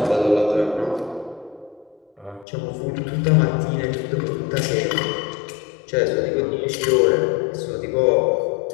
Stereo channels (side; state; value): right; drops out; at 2.5 s